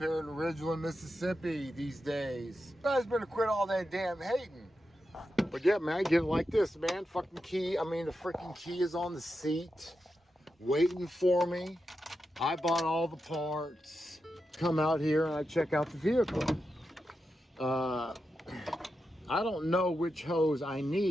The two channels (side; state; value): both; normal; correlation 0.88